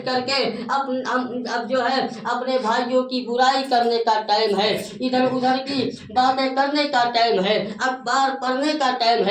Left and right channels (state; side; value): identical; both; correlation 1.00